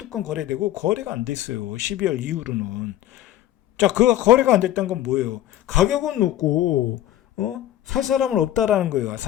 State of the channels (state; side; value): quieter; right; 13.2 dB